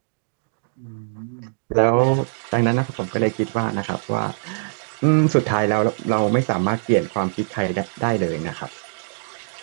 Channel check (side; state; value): left; silent; digital silence